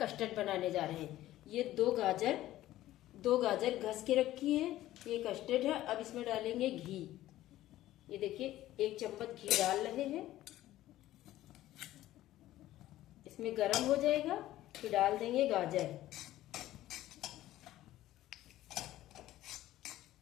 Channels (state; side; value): quieter; right; 14.6 dB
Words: बनाने जा रहे हैं। ये दो गाजर घस के रखी है। ये कस्टर्ड है। अब इसमें डालेंगे घी। ये देखिए 1 चम्मच घी डाल रहे हैं। इसमें गरम हो जाएगा फिर डाल देंगे गाजर।